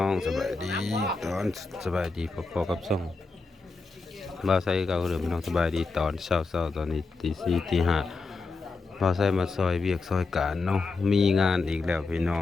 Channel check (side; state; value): right; quieter; 3.9 dB